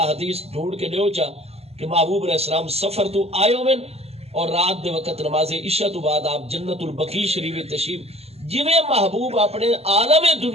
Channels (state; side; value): late; left; 0.30 ms